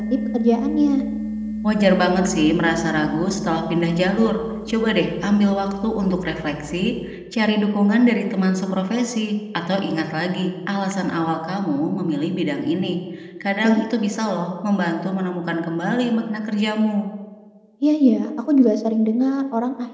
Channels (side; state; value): both; identical; correlation 1.00